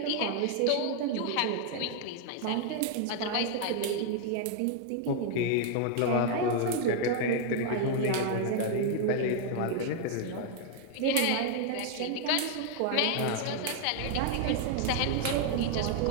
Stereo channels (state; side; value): different; both; correlation 0.00